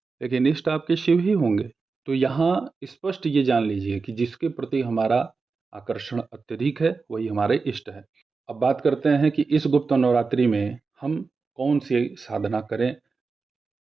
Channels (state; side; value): quieter; left; 4.5 dB